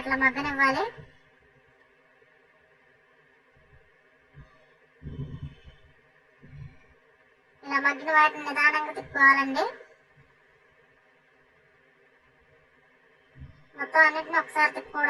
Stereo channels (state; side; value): identical; both; correlation 1.00